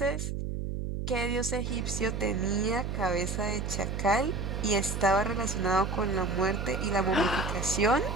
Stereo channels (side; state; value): right; noise; hum, 3 dB below the sound